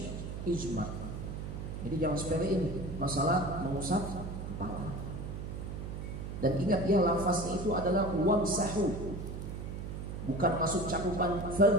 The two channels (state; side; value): noise; right; hum, 6 dB below the sound